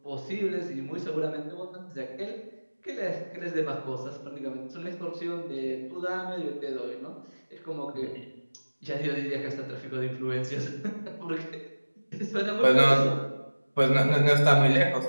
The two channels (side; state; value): both; inverted; correlation -1.00